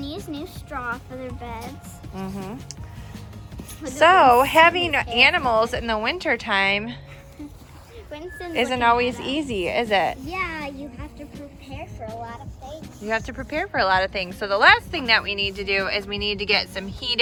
new straw for their beds. So having animals in the winter time Winston's isn't looking always that up. easy, is it? Yeah, you have to prepare for a lot of things. You have to prepare for a lot of things. So the last thing that we need to do is we need to get some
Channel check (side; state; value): both; identical; correlation 1.00